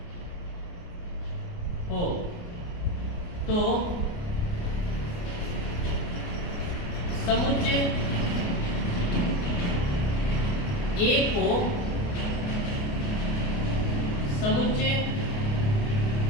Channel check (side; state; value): right; late; 29 ms